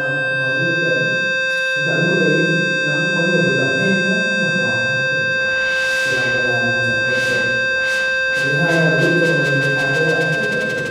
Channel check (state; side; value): identical; both; correlation 1.00